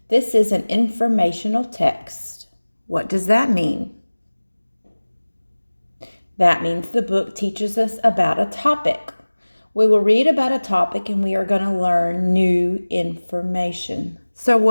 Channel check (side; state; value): both; inverted; correlation -1.00